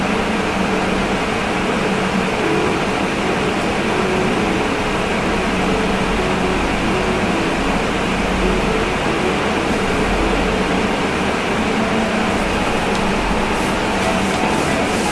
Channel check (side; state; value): both; identical; correlation 1.00